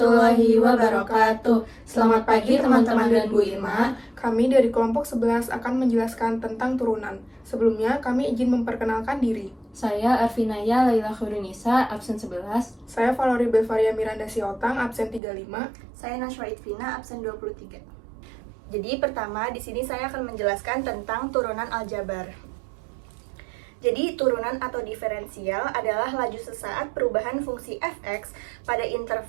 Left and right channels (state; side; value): drops out; left; at 15.2 s